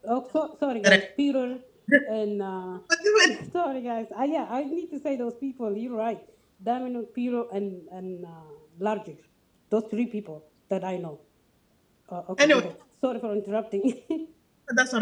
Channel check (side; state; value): both; identical; correlation 1.00